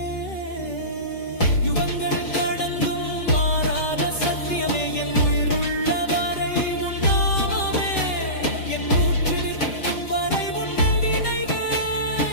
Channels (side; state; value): right; late; 5.3 ms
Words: யுகங்கள் கடந்தும் மாறாத சத்தியமே, என் உயிருள்ள வரை உன் நாமமே, என் மூச்சு நிற்கும் வரை உன்னை